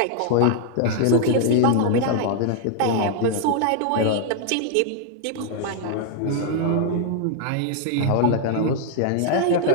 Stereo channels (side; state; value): both; different; correlation 0.00